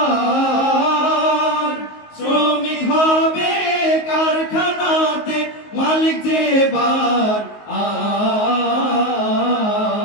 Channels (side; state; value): right; late; 19 ms